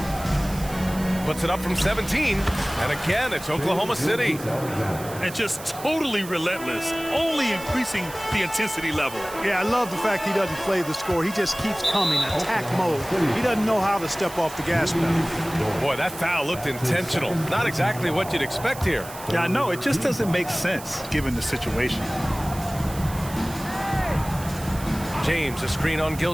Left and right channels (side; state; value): right; noise; hiss, 14 dB below the sound